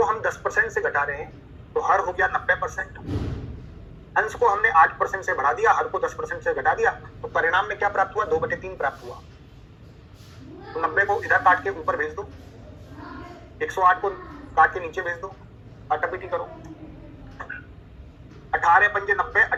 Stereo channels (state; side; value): identical; both; correlation 1.00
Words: हम 10% से घटा रहे हैं तो हर हो गया 90%। अंश को हमने 8% से बढ़ा दिया, हर को 10% से घटा दिया, तो परिणाम में क्या प्राप्त हुआ? 2/3 प्राप्त हुआ। तो 90 को इधर काट के ऊपर भेज दो, 108 को काट के नीचे भेज दो, आटापीटी करो। 18 पंजे 90,